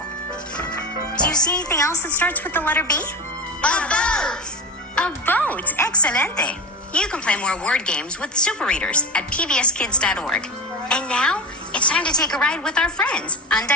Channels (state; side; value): normal; both; correlation 0.22